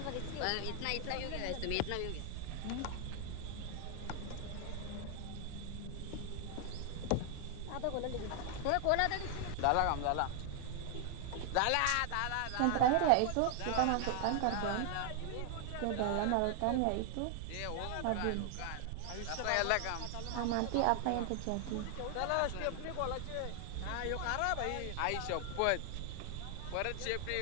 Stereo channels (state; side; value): different; both; correlation 0.00